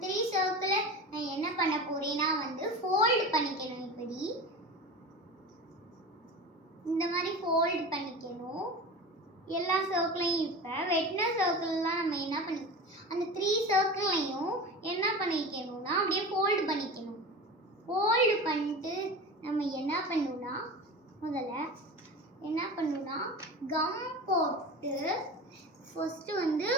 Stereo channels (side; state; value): both; normal; correlation 0.31